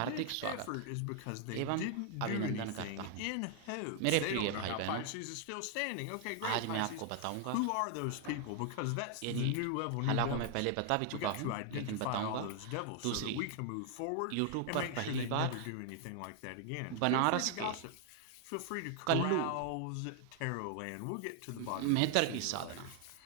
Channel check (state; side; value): different; both; correlation 0.00